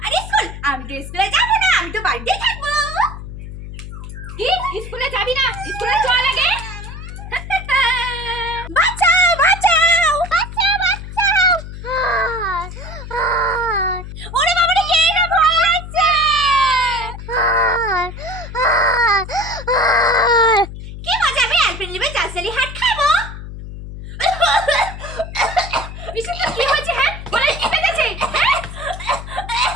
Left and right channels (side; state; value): left; noise; hum, 10 dB below the sound